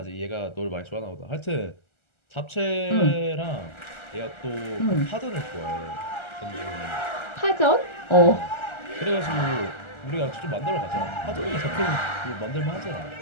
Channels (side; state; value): right; late; 1.3 ms